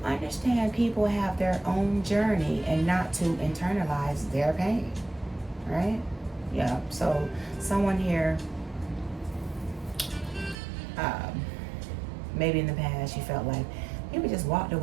understand people have their own journey and not to internalize their pain, right? Yeah, so someone here, maybe in the past you felt like people just walked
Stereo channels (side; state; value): left; drops out; at 10.6 s